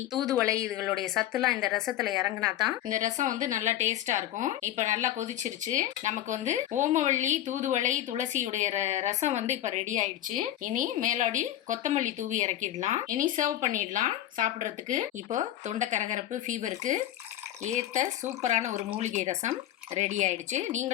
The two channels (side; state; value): right; quieter; 12.7 dB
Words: தூதுவளை இதுகளுடைய சத்துலாம் இந்த ரசத்துல இறங்கினா தான் இந்த ரசம் வந்து நல்லா டேஸ்டா இருக்கும். இப்போ நல்லா கொதிச்சிருச்சு. நமக்கு வந்து ஓமவல்லி, தூதுவளை, துளசியுடைய ரசம் வந்து இப்போ ரெடி ஆயிடுச்சு. இனி மேலாடி கொத்தமல்லி தூவி இறக்கிடலாம். இனி சர்வ் பண்ணிடலாம் சாப்பிட்றதுக்கு. இப்போ தொண்டை கரகரப்பு, ஃபீவருக்கு ஏற்ற சூப்பரான ஒரு மூலிகை ரசம் ரெடி ஆயிடுச்சு.